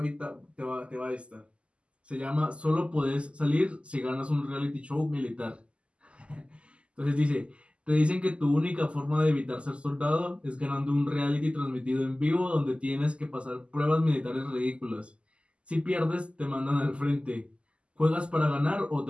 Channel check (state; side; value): late; left; 0.055 ms